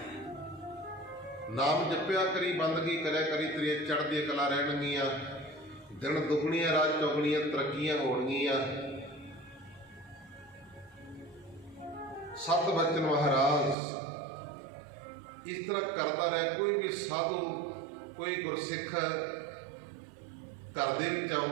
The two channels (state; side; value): drops out; left; at 13.8 s